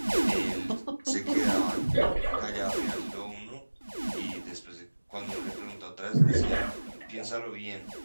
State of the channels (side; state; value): both; inverted; correlation -1.00